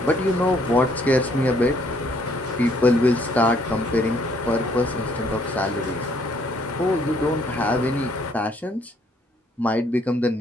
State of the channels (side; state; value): both; normal; correlation 0.65